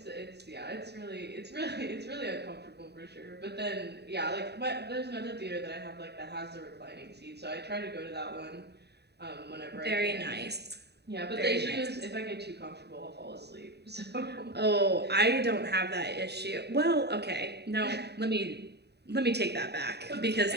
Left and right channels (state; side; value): late; left; 0.48 ms